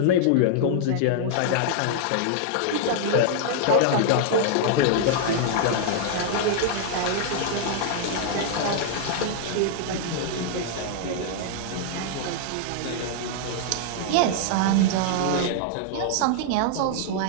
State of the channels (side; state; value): both; different; correlation -0.01